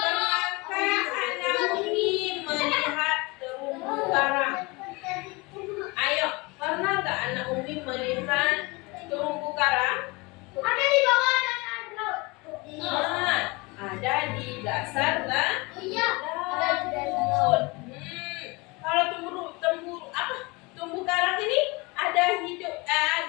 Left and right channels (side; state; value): right; quieter; 25.7 dB